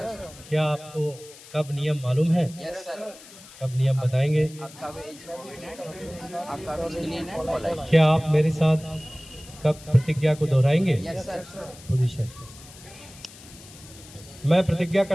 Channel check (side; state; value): left; noise; hiss, 19 dB below the sound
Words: क्या आपको कब नियम मालूम है? Yes sir. कब नियम बताएंगे? आपका भी क्या आप मेरे साथ कब प्रतिज्ञा को दोहराएंगे? Yes sir. पोजीशन। मैं प्रतिज्ञा